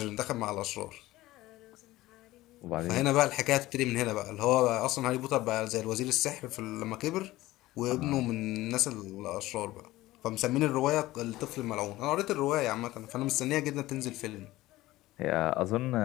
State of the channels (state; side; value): quieter; right; 17.3 dB